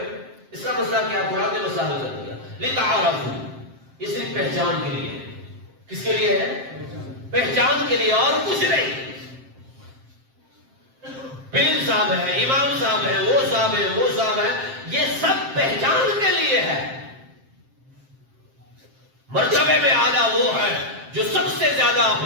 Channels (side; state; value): left; late; 7.6 ms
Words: اس کا مسئلہ کیا؟ قرآن نے مسئلہ حل کر دیا. لتعارفوا، یہ صرف پہچان کے لیے ہے. کس کے لیے ہے؟ پہچان کے لیے، اور کچھ نہیں. پیر صاحب ہے، امام صاحب ہے، وہ صاحب ہے، وہ صاحب ہے، یہ سب پہچان کے لیے ہے. مرتبے میں اعلیٰ وہ ہے جو سب سے زیادہ